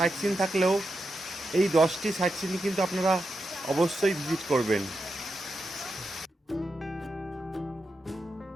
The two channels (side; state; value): both; normal; correlation 0.87